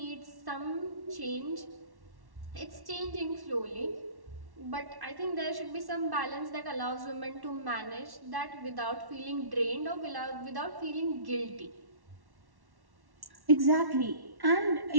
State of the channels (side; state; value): left; late; 1.1 ms